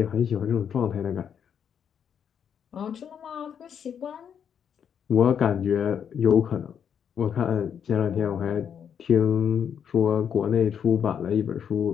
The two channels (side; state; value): right; quieter; 8.0 dB